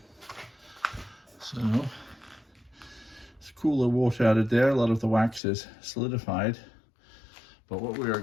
So it's cooler water out of there. A lot of the wax is solidified. But what we are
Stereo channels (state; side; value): drops out; right; at 5.4 s